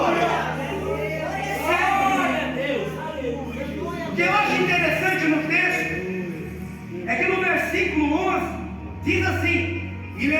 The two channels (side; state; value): both; identical; correlation 1.00